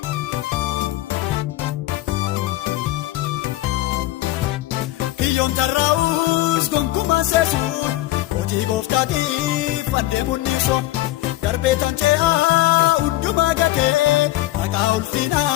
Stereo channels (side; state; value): right; quieter; 16.3 dB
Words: Kiyyoon tarraa'us gonkumaan seesuun hojii gooftaatiif adeemuun niisoo darbee tan ce'aa hundumaa gatee maqaa